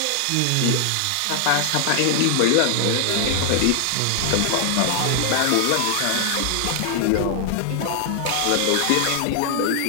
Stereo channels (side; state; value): both; different; correlation 0.00